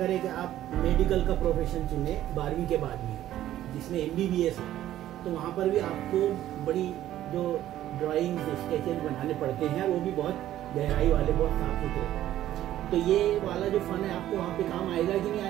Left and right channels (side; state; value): left; quieter; 13.0 dB